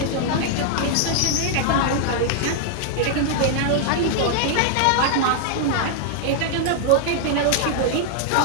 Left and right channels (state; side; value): different; both; correlation -0.01